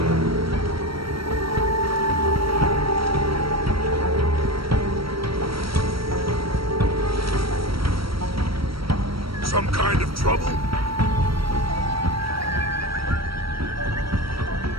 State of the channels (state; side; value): late; left; 0.75 ms